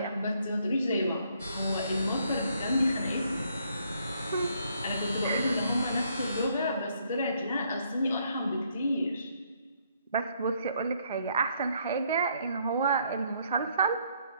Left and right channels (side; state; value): both; inverted; correlation -0.70